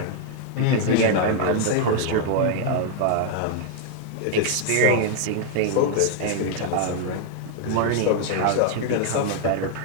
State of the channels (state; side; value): different; both; correlation 0.00